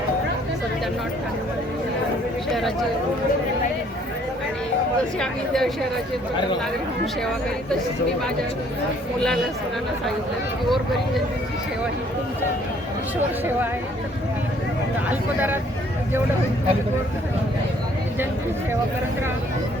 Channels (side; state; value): both; normal; correlation 0.62